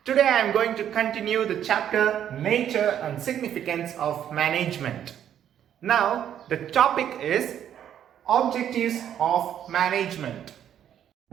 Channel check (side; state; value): left; quieter; 9.9 dB